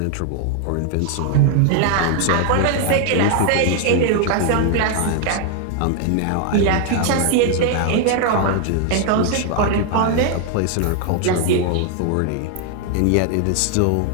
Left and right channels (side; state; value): both; different; correlation 0.00